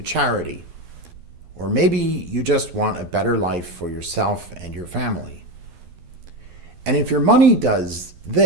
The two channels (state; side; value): late; left; 11 ms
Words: charity. Or maybe you just want a better life for yourself and your family. And if your money does